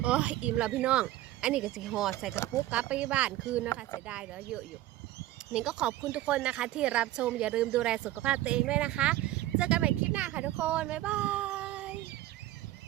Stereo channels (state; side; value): quieter; left; 15.2 dB